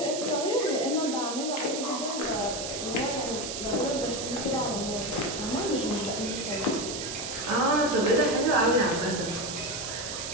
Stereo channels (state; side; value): noise; right; hiss, 6 dB below the sound